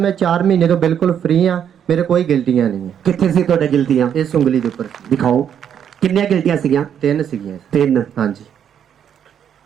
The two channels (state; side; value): quieter; left; 8.8 dB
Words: 4 ਮਹੀਨੇ ਤੋਂ ਬਿਲਕੁਲ ਫ੍ਰੀ ਹਾਂ। ਮੇਰੇ ਕੋਈ ਗਿਲਟੀਆਂ ਨਹੀਂ ਹੈ। ਕਿੱਥੇ ਸੀ ਤੁਹਾਡੇ ਗਿਲਟੀਆਂ? ਇਸ ਉਂਗਲੀ ਦੇ ਉੱਪਰ ਸੀ। ਦਿਖਾਓ ਕਿੰਨੀਆਂ ਗਿਲਟੀਆਂ ਸੀਗੀਆਂ? 3 ਸੀਗੀਆਂ। 3। ਹਾਂਜੀ